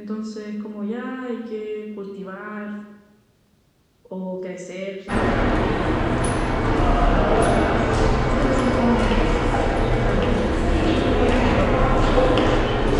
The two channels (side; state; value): both; identical; correlation 1.00